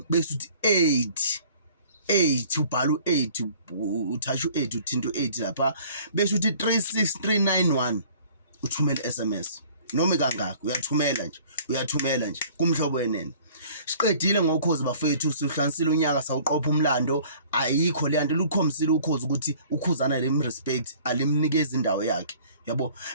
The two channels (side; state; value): both; inverted; correlation -0.52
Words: bese uthi 8 ubhala u8 uthasha u8 uthinta u8 lapha bese uthi 36391 uthumela SMS noma kangaka uyathumela nje kumhlobo wenene. Siqedile ngokhozi bafethu, sihlanisile unyaka sawuqopha umlando. Ayikho le nto lukhomisile ukhozi ukuthi ukhuzana lemrespect, alimnikeza indawo yakhe, yabo,